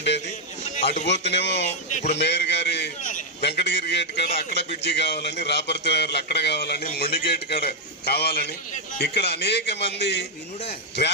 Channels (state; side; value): normal; both; correlation -0.01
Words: అటు పోతేనేమో ఇప్పుడు మేయర్ గారి వెంకటగిరి గేట్ కాడ అక్కడ బ్రిడ్జి కావాలని, రాపర్తి నగర్లో అక్కడ కావాలని, మొండి గేట్ కాడ కావాలని, ఇక్కడ అనేక మంది